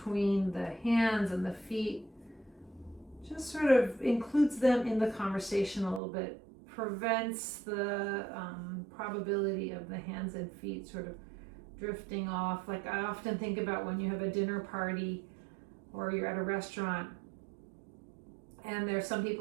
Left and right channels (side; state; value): left; drops out; at 6.0 s